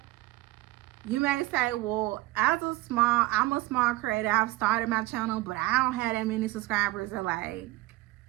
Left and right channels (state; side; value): quieter; left; 19.6 dB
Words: you may say, well, I'm a small creator. I've started my channel, but I don't have that many subscribers. Or like,